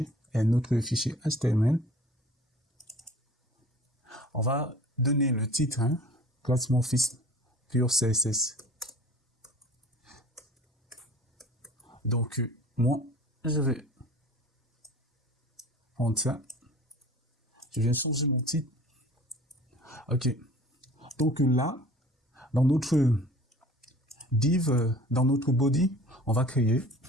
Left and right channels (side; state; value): both; normal; correlation 0.45